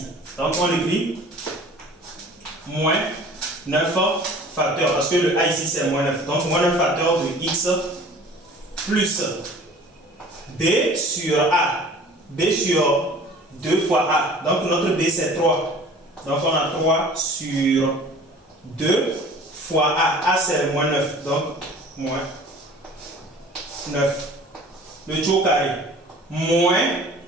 Donc, on écrit moins 9 facteurs, parce que le A ici c'est moins 9. Donc, moins 9 facteurs de x plus B sur A. B sur 2 fois A. Donc, notre B c'est 3. Donc, on a 3 sur 2 fois A. A, c'est moins 9. Donc, moins 9. Le tout au carré. Moins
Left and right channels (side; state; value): both; normal; correlation 0.46